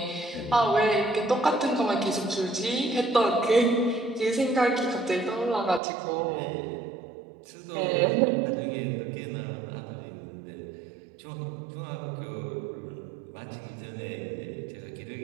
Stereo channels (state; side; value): drops out; left; at 5.8 s